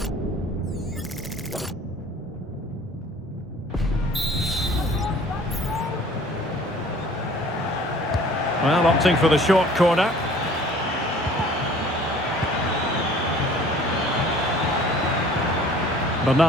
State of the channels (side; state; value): both; normal; correlation 0.51